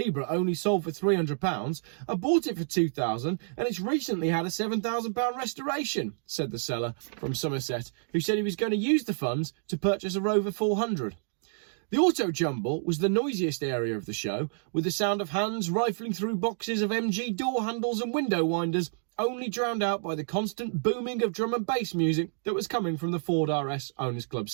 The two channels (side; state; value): left; silent; digital silence